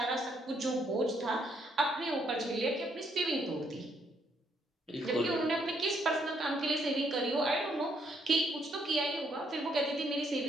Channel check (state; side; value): normal; both; correlation 0.71